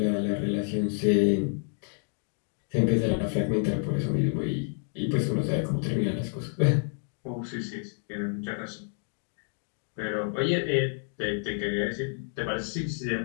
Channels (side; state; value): right; silent; 56 dB below the other